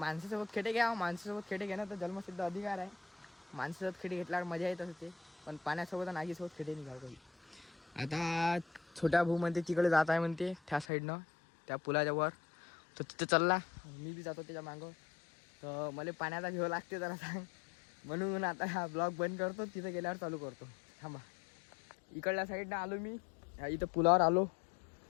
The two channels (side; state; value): right; drops out; at 10.9 s